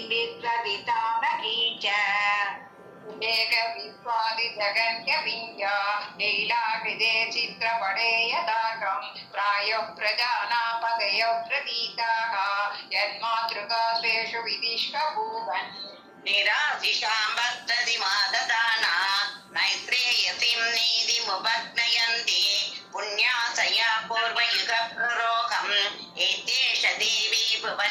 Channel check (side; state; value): both; identical; correlation 1.00